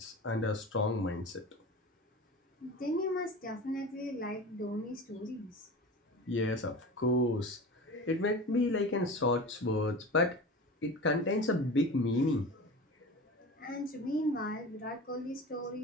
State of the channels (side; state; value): both; normal; correlation 0.33